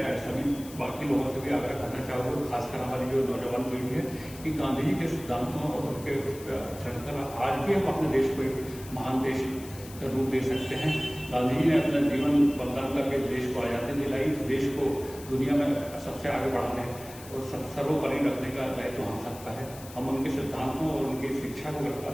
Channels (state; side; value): noise; left; hiss, 17 dB below the sound